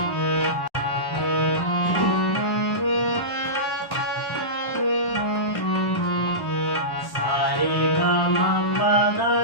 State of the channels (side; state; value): right; late; 1.1 ms